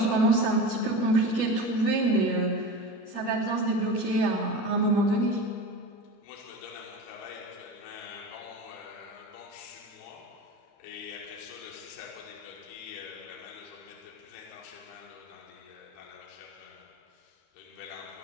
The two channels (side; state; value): right; late; 13 ms